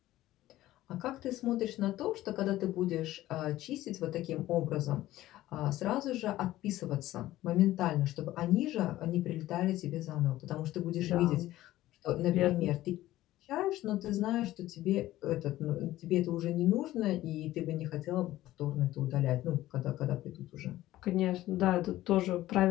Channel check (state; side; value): quieter; right; 15.4 dB